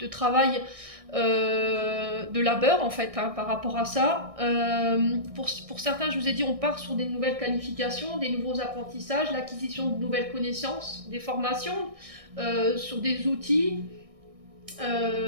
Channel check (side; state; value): left; late; 1.6 ms